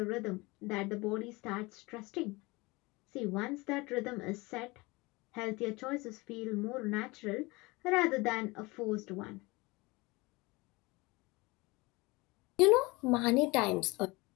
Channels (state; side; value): quieter; right; 23.8 dB